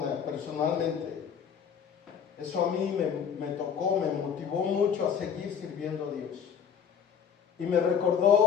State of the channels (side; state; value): right; quieter; 7.5 dB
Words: personalmente, eso a mí me tocó, me motivó mucho a seguir sirviendo a Dios. Y me